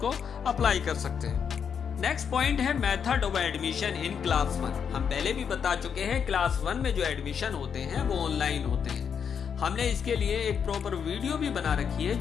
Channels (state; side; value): quieter; right; 7.2 dB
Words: अप्लाई कर सकते हैं। नेक्स्ट पॉइंट है method of admission in class 1। हम पहले भी बता चुके हैं क्लास 1 में जो एडमिशन होते हैं वो ऑनलाइन होते हैं। हमने इसके लिए एक प्रॉपर वीडियो भी बना रखी है